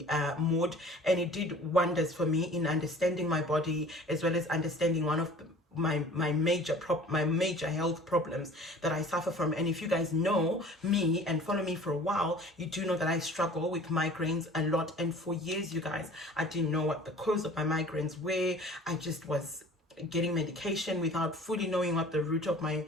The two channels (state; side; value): normal; both; correlation 0.47